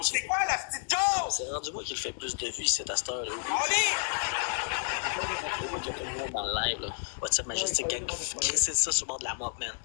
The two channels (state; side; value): silent; right; digital silence